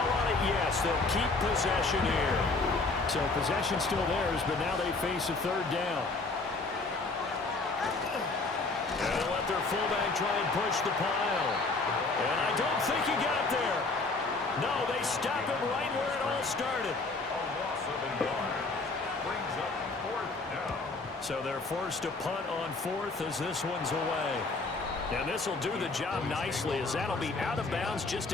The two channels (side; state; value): right; quieter; 3.6 dB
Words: on it. Yes, they'll keep possession here. So possession still theirs, but now they face a third down. And they'll let their fullback try and push the pile. And I don't think he got there. No, they stop him right where it all started. A loss of a yard brings up 4th down. So they're forced to punt on 4th as this one's away. And this will do the job nicely as that'll be out of bounds just